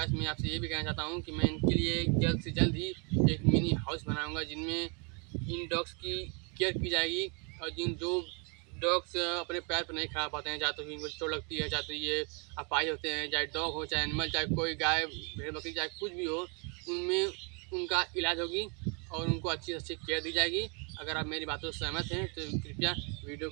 मैं आपसे ये भी कहना चाहता हूं कि मैं इनके लिए जल्द से जल्द ही एक मिनी हाउस बनाऊंगा, जिनमें इन डॉग्स की केयर की जाएगी। और जो डॉग्स अपने पैर पर नहीं खड़ा पाते हैं, चाहे तो इनको चोट लगती है, चाहे तो ये अपाहिज होते हैं, चाहे डॉग हो, चाहे एनिमल, चाहे कोई गाय भेड़ बकरी, चाहे कुछ भी हो, उनमें उनका इलाज होगी और उनको अच्छी से अच्छी केयर दी जाएगी। अगर आप मेरी बातों से सहमत हैं तो कृपया वीडियो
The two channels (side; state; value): left; quieter; 35.3 dB